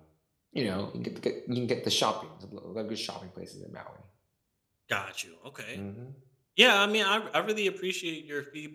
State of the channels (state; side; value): identical; both; correlation 1.00